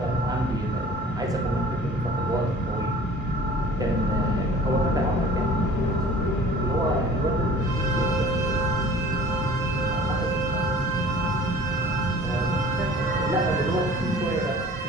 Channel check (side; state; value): both; normal; correlation 0.46